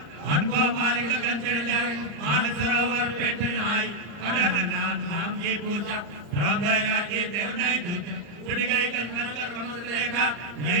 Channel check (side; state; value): left; late; 34 ms